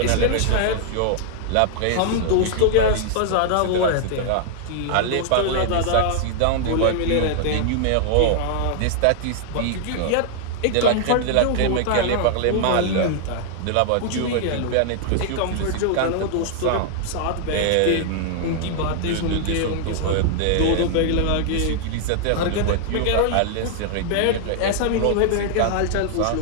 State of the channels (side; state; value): both; different; correlation -0.01